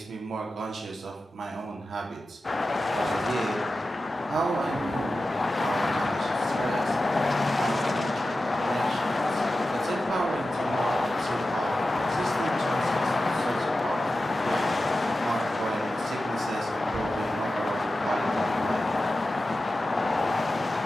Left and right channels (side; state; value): both; normal; correlation 0.93